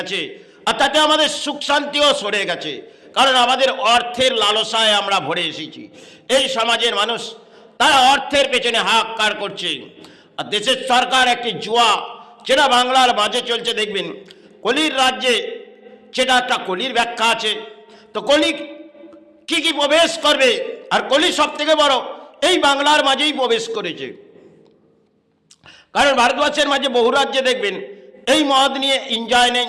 আর তাতে আমাদের সুখ শান্তিও সরে গেছে। কারণ আমাদের অর্থের লালসায় আমরা ভরে এসেছি। এই সমাজের মানুষ তারা অর্থের পেছনে হাহাকার করছে। আর দেশের সরকার একটি জুয়া যেটা বাংলার মাঝে চলছে, দেখবেন কলির রাজ্যে সেটা একটা কলির ব্যাখ্যা আছে। তো কলি কি কি প্রবেশ করবে, আর কলি সব থেকে বড় এই বাংলার মাঝেই প্রবেশ করেছে। কারণ ভারতবর্ষের মাঝে বহু রাজ্যে দেখবেন এই মদ নিয়ে এনজয় নেই,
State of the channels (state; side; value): identical; both; correlation 1.00